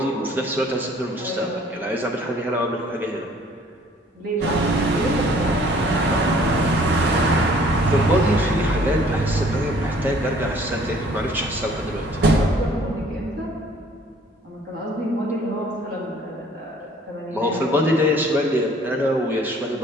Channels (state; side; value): normal; both; correlation 0.56